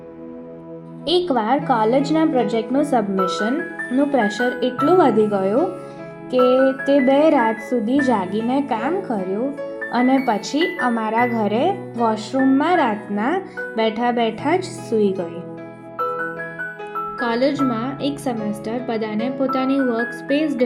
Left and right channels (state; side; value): identical; both; correlation 1.00